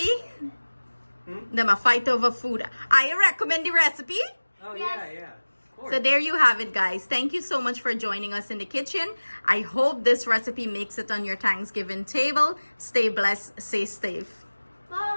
Them a fight over food. I recommend the recipe. Oh, Yes. yeah. Of course. So there you have it, guys. Thank you so much for joining us in the kitchen. I hope this recipe makes it on your Thanksgiving table. Stay blessed, stay safe.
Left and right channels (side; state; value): both; inverted; correlation -1.00